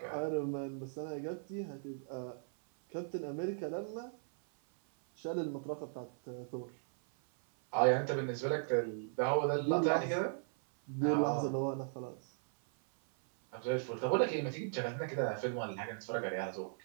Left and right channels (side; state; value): left; silent; 53 dB below the other